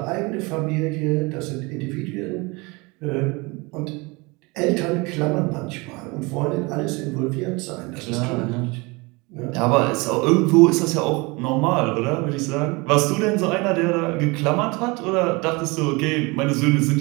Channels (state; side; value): quieter; left; 26.1 dB